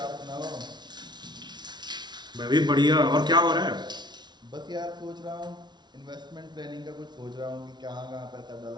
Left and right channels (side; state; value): left; late; 0.20 ms